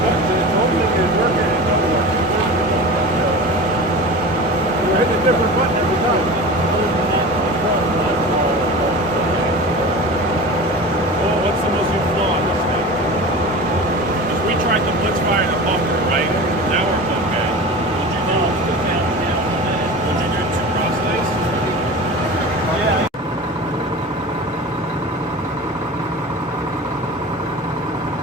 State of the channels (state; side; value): normal; both; correlation 0.33